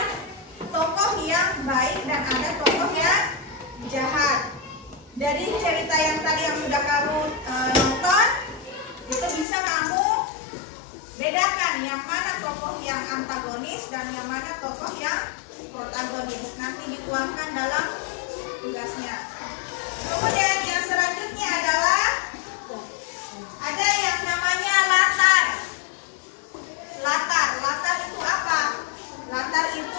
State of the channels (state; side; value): drops out; right; at 9.5 s